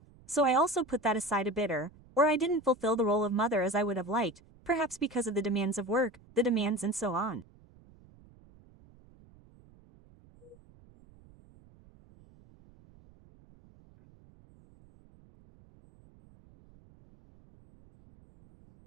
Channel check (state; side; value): noise; right; rumble, 26 dB below the sound